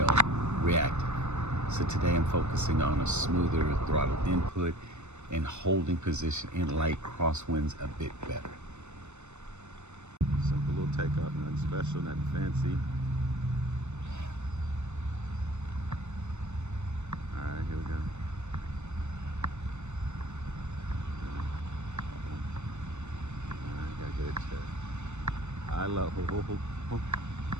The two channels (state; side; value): late; left; 0.82 ms